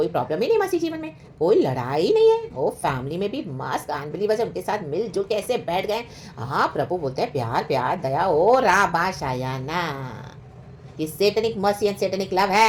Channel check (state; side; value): identical; both; correlation 1.00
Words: प्रॉब्लम ही नहीं मसीह जीवन में, कोई लड़ाई नहीं है। ओ फैमिली में भी मस्त अनबिलीवर्स उनके साथ मिलजुल के ऐसे बैठ गए। हाँ प्रभु बोलते हैं प्यार प्यार दया। ओ राबा शायाना। ये Satinique mercy and Satinique love